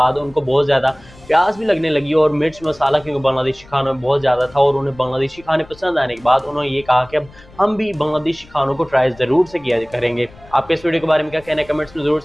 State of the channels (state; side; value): noise; left; rumble, 24 dB below the sound